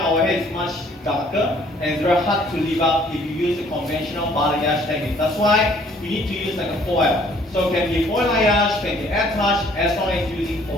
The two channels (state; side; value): normal; both; correlation 0.60